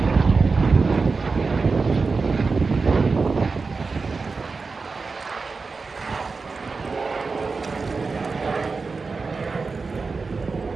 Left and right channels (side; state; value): left; quieter; 4.4 dB